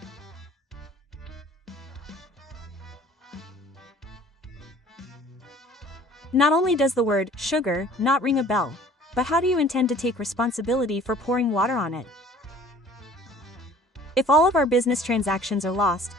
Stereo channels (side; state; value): both; normal; correlation 0.50